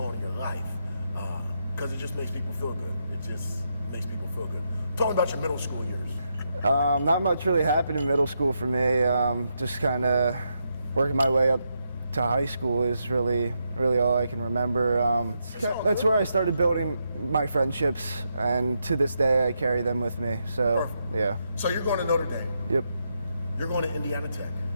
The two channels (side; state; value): both; inverted; correlation -0.82